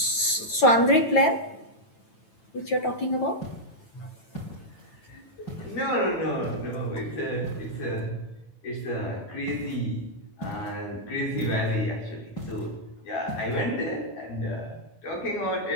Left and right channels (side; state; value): right; late; 9.1 ms